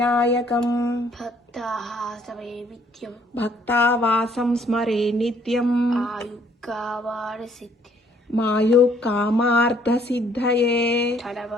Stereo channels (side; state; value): both; normal; correlation 0.63